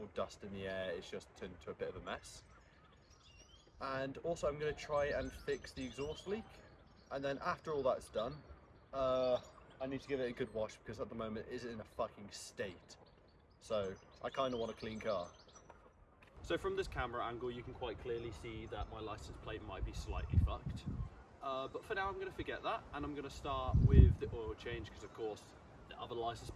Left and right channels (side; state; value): both; identical; correlation 1.00